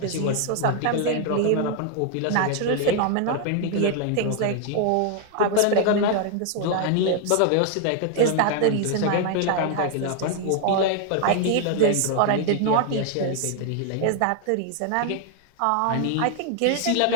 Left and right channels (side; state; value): both; different; correlation 0.00